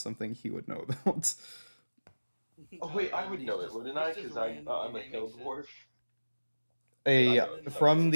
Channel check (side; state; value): both; inverted; correlation -1.00